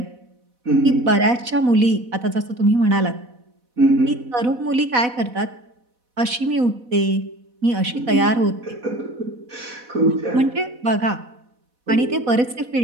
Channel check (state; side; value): late; left; 4.1 ms